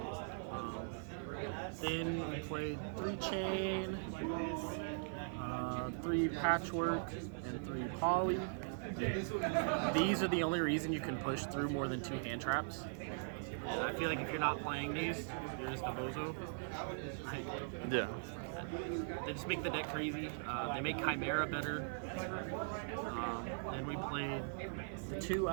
Then we played 3 Chain, 3 Patchwork, and 3 Poly. These are the only reason you can push through more than 2 hand traps. And I feel like if you're not playing these, you're just a bozo. Yeah. They just make the deck crazy. They make Chimera better. Then we played the 2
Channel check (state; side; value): silent; left; 51 dB below the other